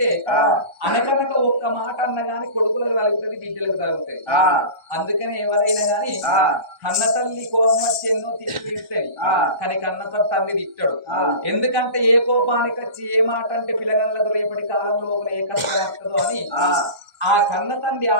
అనకనక ఒక్క మాట అన్న గాని కొడుకులకు తలుగుతుంది బిడ్డలకు తలుగుతుంది అందుకని ఎవరైనా గాని కన్న తల్లి కోపం వచ్చి ఎన్నో తిడుతుంది కానీ కన్న తల్లి తిట్టాడు ఎందుకంటే ఏ కోపానికి వచ్చి ఏ మాట అంటే పిల్లగాళ్ళకు రేపటి కాలం లోపల ఏ కష్టం వస్తుందో అని ఆ కన్న తండ్రి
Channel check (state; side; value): late; left; 1.3 ms